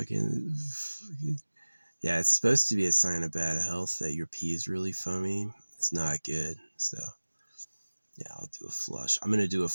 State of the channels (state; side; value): inverted; both; correlation -1.00